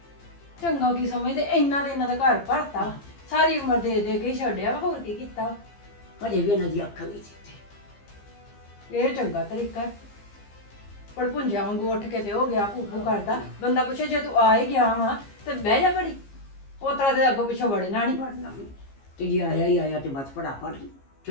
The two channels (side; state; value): right; late; 15 ms